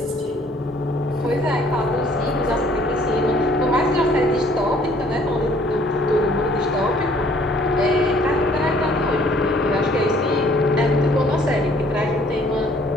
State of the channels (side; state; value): both; normal; correlation 0.59